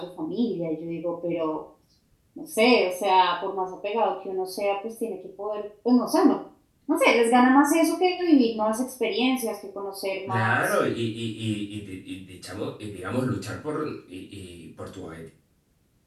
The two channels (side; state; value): both; identical; correlation 1.00